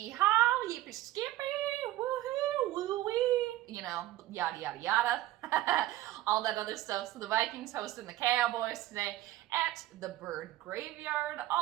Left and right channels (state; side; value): quieter; left; 15.3 dB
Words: yippee skippy, woohoo, woo-wee, you know, yada yada yada, all that other stuff. So the Vikings hosting the Cowboys today at the Bird Graveyard,